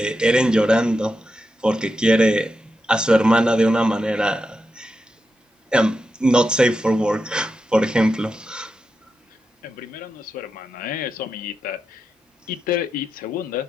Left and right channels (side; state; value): both; normal; correlation 0.88